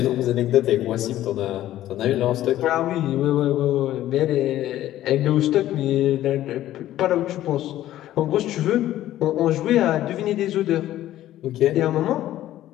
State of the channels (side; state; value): right; quieter; 13.6 dB